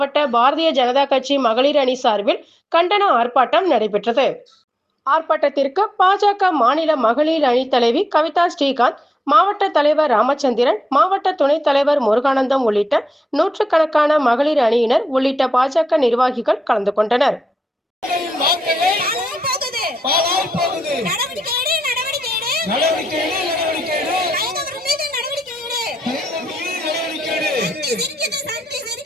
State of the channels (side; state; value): both; normal; correlation 0.88